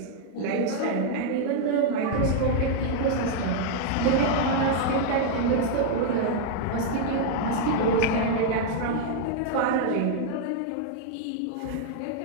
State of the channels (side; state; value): both; different; correlation 0.00